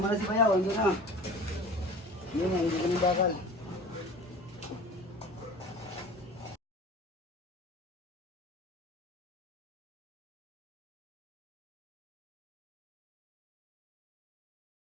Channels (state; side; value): normal; both; correlation 0.40